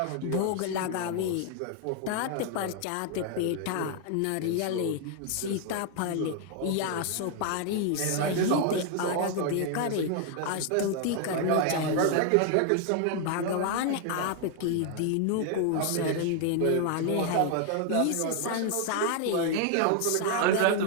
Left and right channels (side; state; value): both; different; correlation 0.00